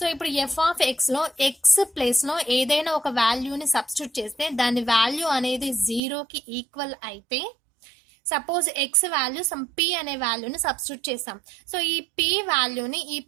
ఇప్పుడు ఎఫ్ ఆఫ్ ఎక్స్లో ఎక్స్ ప్లేస్లో ఏదైనా ఒక వాల్యూని సబ్స్టిట్యూట్ చేస్తే దాని వాల్యూ అనేది 0కి ఈక్వల్ అయితే, suppose X value some P అనే వాల్యూని సబ్స్టిట్యూట్ చేస్తాం. సో ఈ పి వాల్యూని ఈ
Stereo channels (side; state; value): left; drops out; at 6.0 s